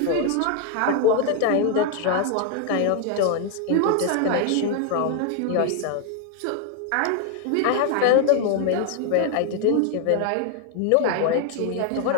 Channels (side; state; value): both; different; correlation 0.00